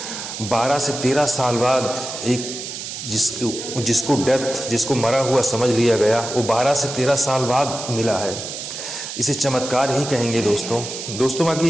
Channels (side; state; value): right; noise; hiss, 8 dB below the sound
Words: 12 से 13 साल बाद एक जिसको डेथ, जिसको मरा हुआ समझ लिया गया, वो 12 से 13 साल बाद मिला है। इसे चमत्कार ही कहेंगे दोस्तों।